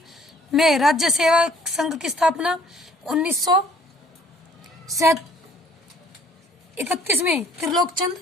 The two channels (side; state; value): both; normal; correlation 0.58